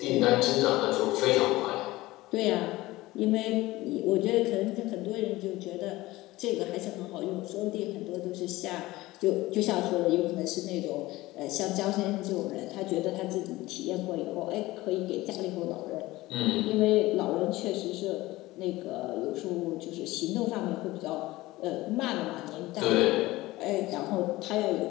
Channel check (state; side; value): quieter; right; 18.7 dB